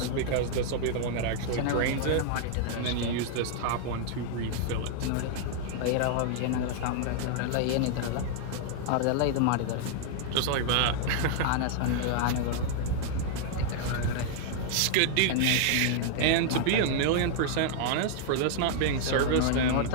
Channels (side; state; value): both; different; correlation -0.01